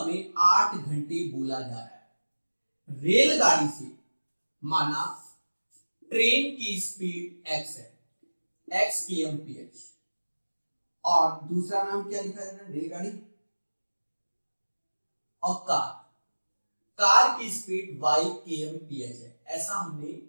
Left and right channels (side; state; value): both; inverted; correlation -1.00